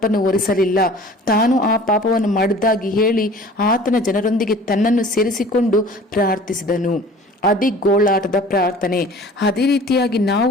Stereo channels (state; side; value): normal; both; correlation 0.46